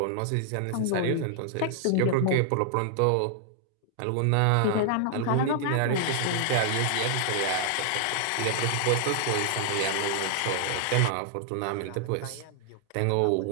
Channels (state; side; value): different; both; correlation 0.00